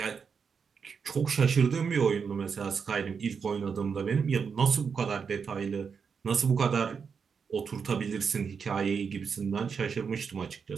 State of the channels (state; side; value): quieter; left; 6.1 dB